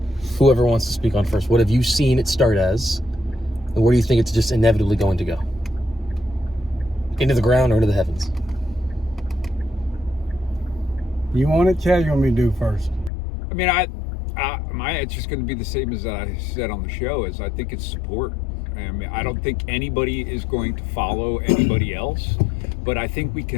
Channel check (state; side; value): drops out; right; at 13.1 s